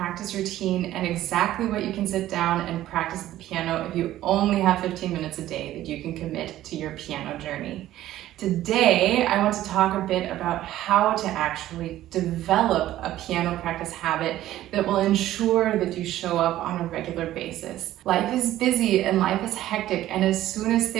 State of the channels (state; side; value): quieter; left; 13.9 dB